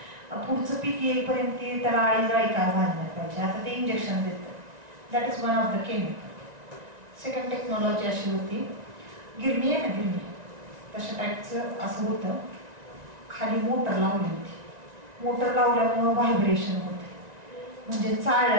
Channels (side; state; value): left; late; 1.9 ms